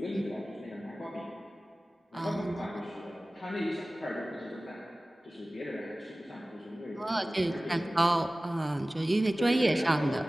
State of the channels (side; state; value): both; normal; correlation 0.97